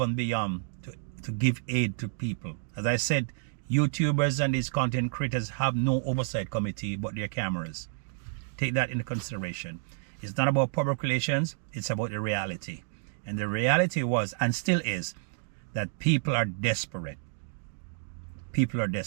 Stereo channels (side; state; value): left; silent; digital silence